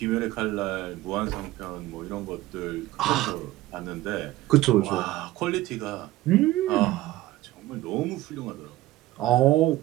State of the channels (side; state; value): left; quieter; 16.5 dB